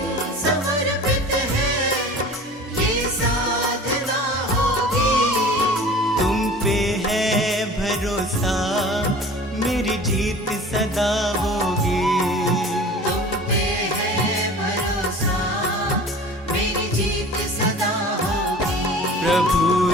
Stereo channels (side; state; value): both; normal; correlation 0.42